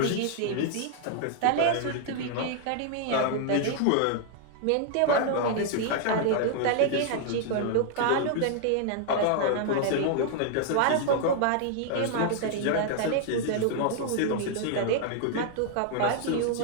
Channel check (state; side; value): different; both; correlation 0.00